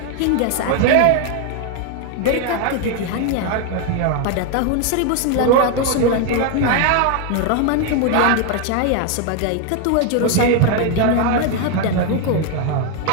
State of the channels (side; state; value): both; different; correlation 0.01